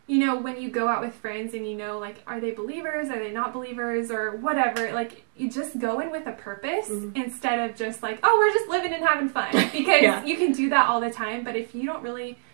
you know, when you go out with friends and you know, like, are they believers? Are they not believers? Or whatever. Like, you just go in with a purpose instead of just like, oh, we're just living and having fun. Because you can do that all the time. But if you don't really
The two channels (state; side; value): silent; left; digital silence